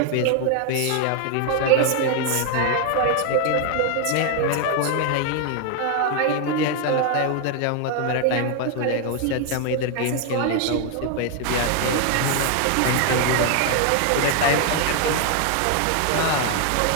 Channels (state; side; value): different; both; correlation 0.00